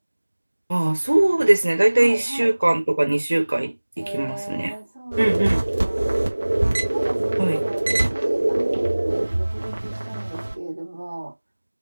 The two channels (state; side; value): inverted; both; correlation -1.00